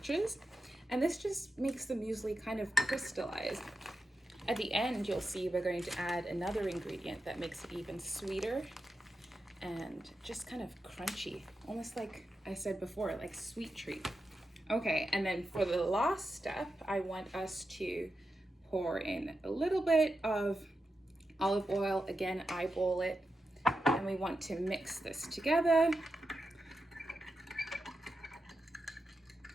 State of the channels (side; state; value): both; normal; correlation 0.89